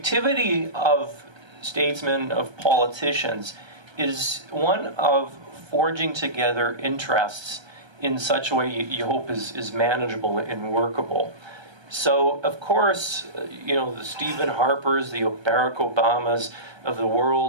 of statesmen, of politicians, is one of forging together interests in such a way you hope is manageable and workable. So, of course, you know, the Stephen Harpers, the Barack Obamas of the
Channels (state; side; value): late; left; 1.3 ms